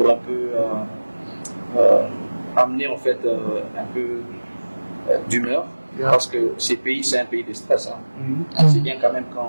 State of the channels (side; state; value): both; inverted; correlation -1.00